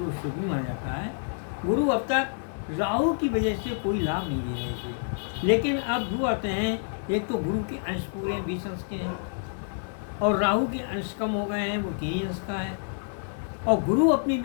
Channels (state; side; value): silent; right; digital silence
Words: शुभ भी माना जाता है। गुरु अब तक राहु की वजह से कोई लाभ नहीं दे रहे थे, लेकिन अब दो आते हैं। एक तो गुरु के अंश पूरे 20 अंश के हैं, और राहु के अंश कम हो गए हैं, वो 3 अंश का है, और गुरु अपनी